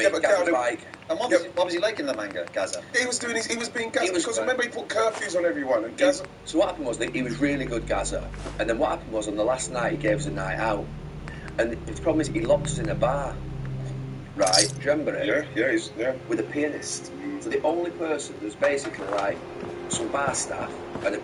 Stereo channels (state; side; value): identical; both; correlation 1.00